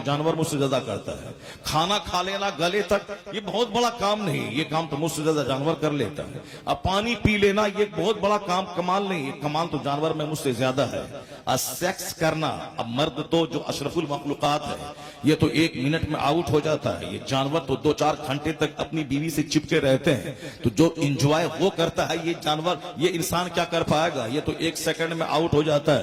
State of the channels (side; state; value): both; identical; correlation 1.00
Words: جانور مجھ سے زیادہ کرتا ہے۔ کھانا کھا لینا گلے تک یہ بہت بڑا کام نہیں، یہ کام تو مجھ سے زیادہ جانور کر لیتا ہے۔ اب پانی پی لینا یہ بہت بڑا کام، کمال نہیں، یہ کمال تو جانور میں مجھ سے زیادہ ہے۔ سیکس کرنا، اب مرد تو جو اشرف المخلوقات ہے یہ تو 1 منٹ میں آؤٹ ہو جاتا ہے، یہ جانور تو 2-4 گھنٹے تک اپنی بیوی سے چپکے رہتے ہیں، تو جو انجوائے وہ کرتا ہے یہ جانور، یہ انسان کیا کر پائے گا؟ یہ تو 1 سیکنڈ میں آؤٹ ہو جاتا